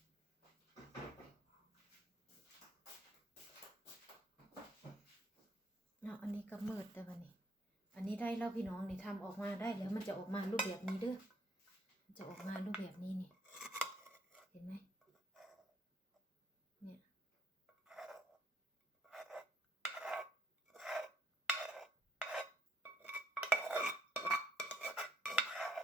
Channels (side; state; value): both; normal; correlation 0.69